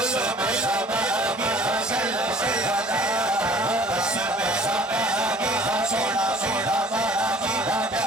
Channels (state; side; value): normal; both; correlation 0.51